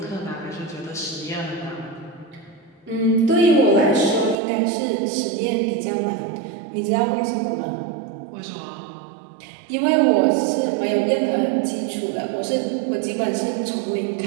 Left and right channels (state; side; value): drops out; left; at 4.4 s